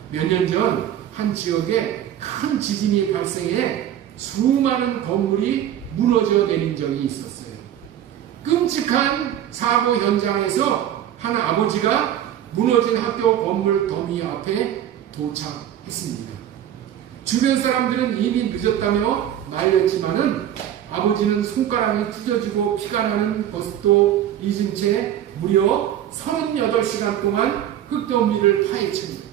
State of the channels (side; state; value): left; quieter; 11.0 dB